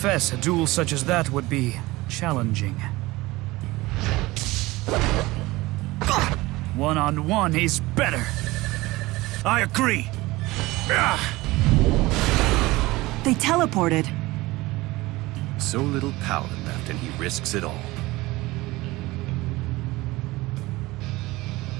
a duel such as that would be challenging. One-on-one, he's better. I agree. They teleported. So little power left, and he risks it all.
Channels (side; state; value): left; quieter; 20.1 dB